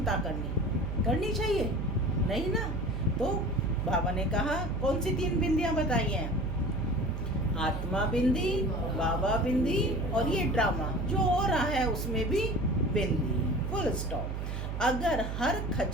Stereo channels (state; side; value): noise; right; hum, 4 dB below the sound